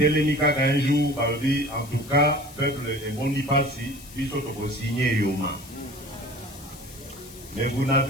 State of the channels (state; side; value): noise; left; hiss, 18 dB below the sound